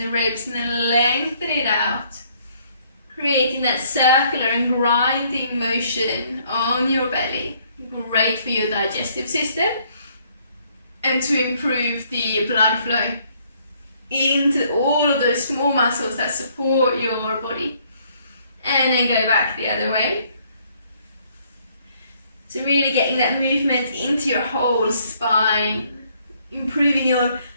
ribs and then lengthen it out. Creating that circular and grinding motion on your belly. Great for your digestive system and to improve the blood flow into all of those small muscles that support your body. and then go back the other way. So really getting that movement into your whole spine, improving your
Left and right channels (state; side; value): inverted; both; correlation -0.66